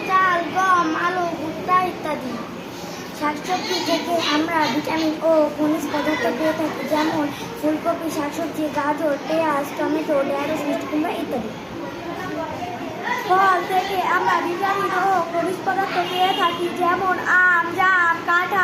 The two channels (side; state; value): both; identical; correlation 1.00